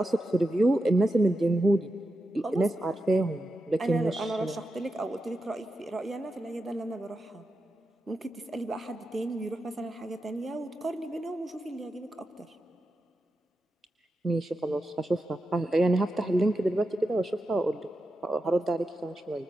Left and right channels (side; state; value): both; normal; correlation 0.89